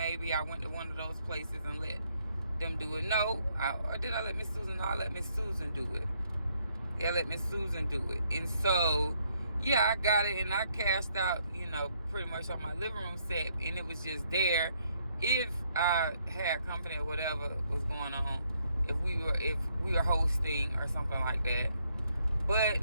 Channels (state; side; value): inverted; both; correlation -0.71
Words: I went to one of those places and let them do it. No, or did I let Miss Susan? No, I let Miss Susan do it. Yeah, let Miss Susan do it. And so, yeah, I got it, and I cashed out, you know, pretty much on my living room set, and it was just there. If I had company or whatever was going on, if we were hosting or something like that. But